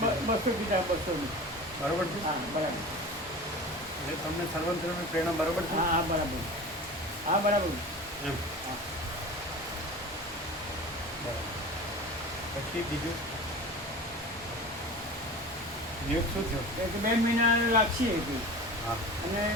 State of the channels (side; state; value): both; normal; correlation 0.35